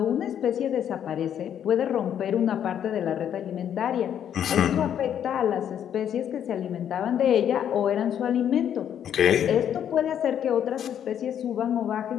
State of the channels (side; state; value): right; quieter; 9.5 dB